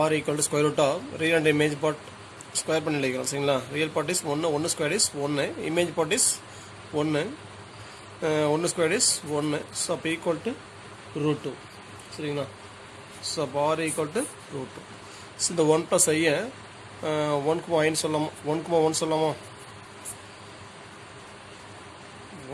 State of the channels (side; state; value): both; identical; correlation 1.00